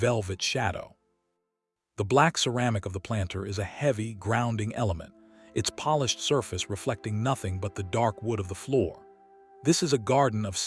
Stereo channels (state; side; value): identical; both; correlation 1.00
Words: shadow. The black ceramic of the planter is a heavy, grounding element, its polished surface reflecting nothing but the dark wood of the floor. This is a garden of